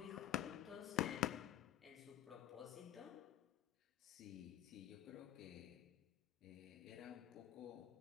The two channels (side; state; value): right; quieter; 12.2 dB